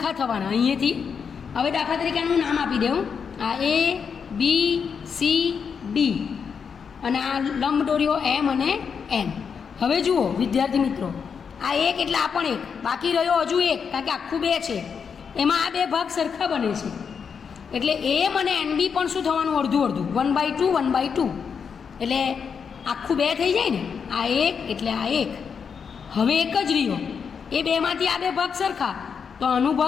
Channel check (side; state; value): right; quieter; 6.4 dB